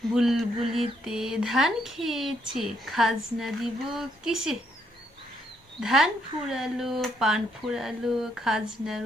বুলবুলিতে ধান খেয়েছে, খাজনা দিব কিসে? ধান ফুরালো, পান ফুরালো, খাজনার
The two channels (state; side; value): normal; both; correlation 0.73